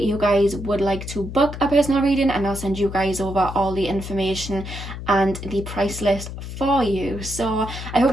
you guys would like to book a personal reading and I'll send you guys over all the information and the price list for you. So I hope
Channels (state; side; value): noise; left; hum, 9 dB below the sound